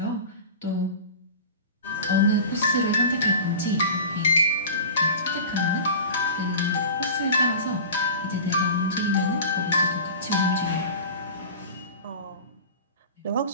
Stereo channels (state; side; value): inverted; both; correlation -0.35